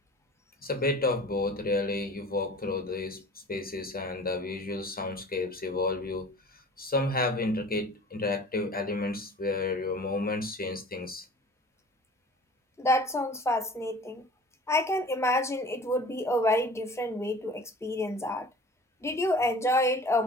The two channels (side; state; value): both; normal; correlation 0.44